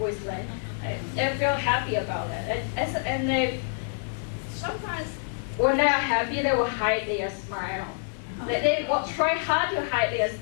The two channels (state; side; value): silent; right; 60 dB below the other